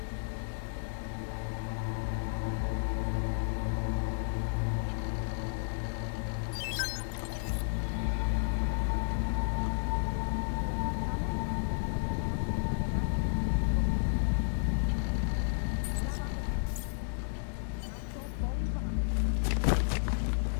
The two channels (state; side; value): silent; right; digital silence